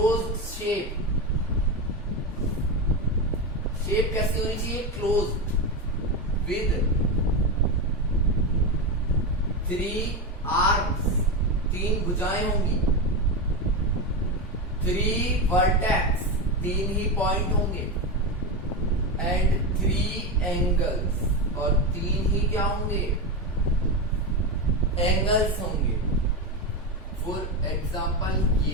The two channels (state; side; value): normal; both; correlation 0.15